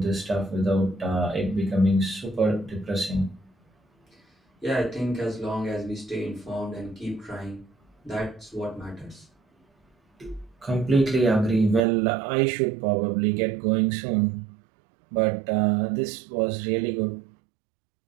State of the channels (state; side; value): drops out; left; at 11.8 s